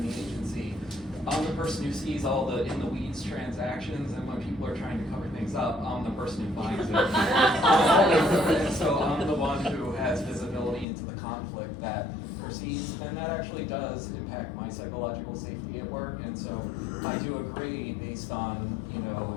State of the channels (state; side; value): drops out; right; at 10.9 s